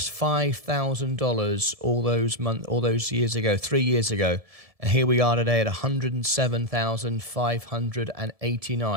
$5,000 all those years ago, 3 years ago. And here we are today at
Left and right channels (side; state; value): left; late; 1.7 ms